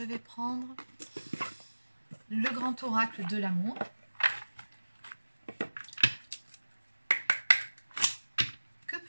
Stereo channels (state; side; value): inverted; both; correlation -1.00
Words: vais prendre le grand oracle de l'amour. Que